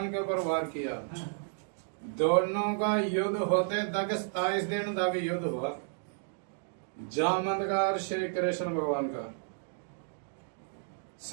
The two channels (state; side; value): silent; left; digital silence